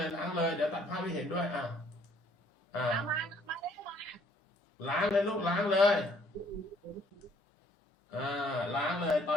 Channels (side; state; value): both; normal; correlation 0.62